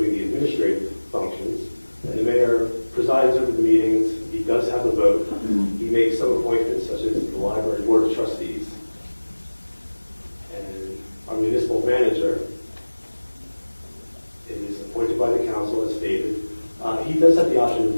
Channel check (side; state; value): both; inverted; correlation -1.00